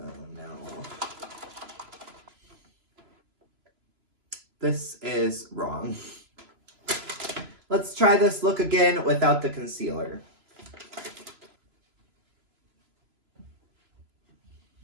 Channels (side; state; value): left; late; 3.0 ms